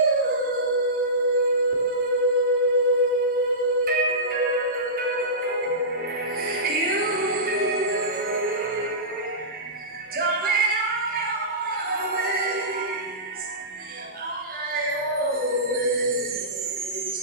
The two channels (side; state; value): both; normal; correlation -0.19